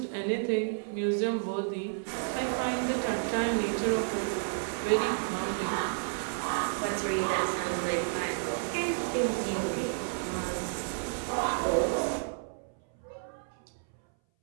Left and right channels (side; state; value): left; silent; 57 dB below the other